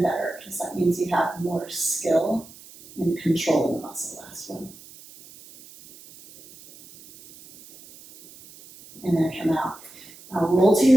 better, because that means you have more skill in controlling the muscle. Last one. And then come out. Now roll to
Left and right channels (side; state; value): right; noise; hiss, 21 dB below the sound